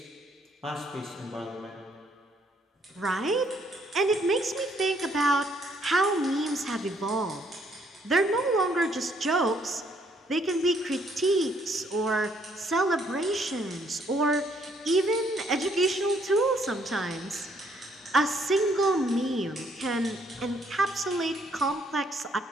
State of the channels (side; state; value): both; normal; correlation 0.68